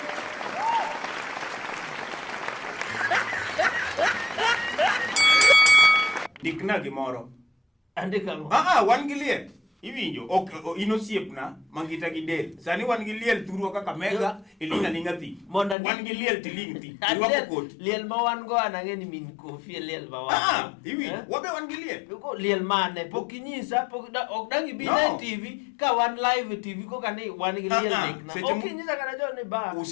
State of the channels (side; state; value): right; drops out; at 15.8 s